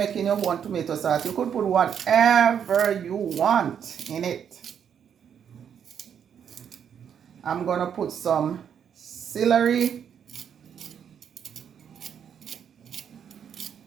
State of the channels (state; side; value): quieter; left; 8.2 dB